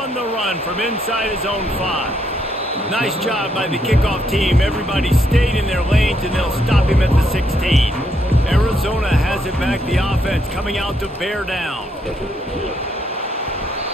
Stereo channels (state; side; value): normal; both; correlation 0.75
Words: the run from inside his own 5. Nice job by the kickoff team. Everybody stayed in their lanes, and they'll stop him at the 16. Arizona has it back. The offense coming out to bear down.